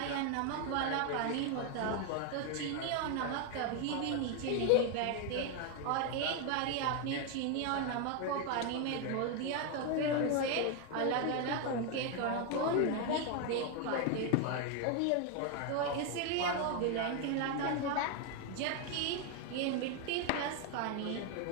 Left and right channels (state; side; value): different; both; correlation 0.01